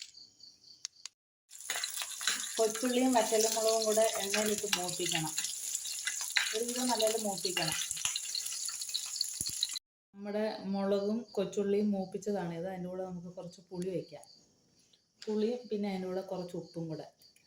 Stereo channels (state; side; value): identical; both; correlation 1.00